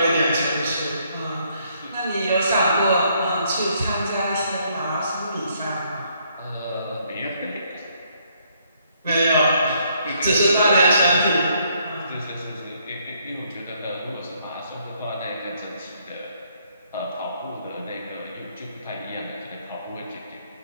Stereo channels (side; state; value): both; inverted; correlation -0.69